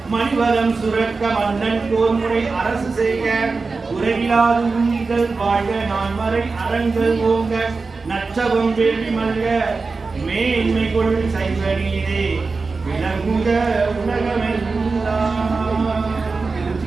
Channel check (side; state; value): left; quieter; 4.1 dB